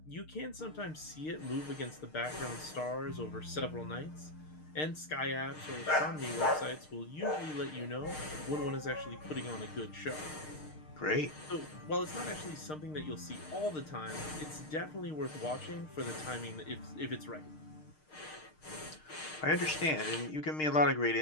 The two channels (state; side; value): late; right; 6.5 ms